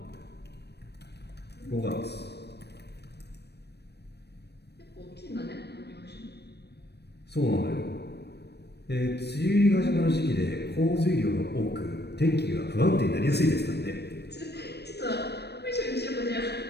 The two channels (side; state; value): right; late; 0.48 ms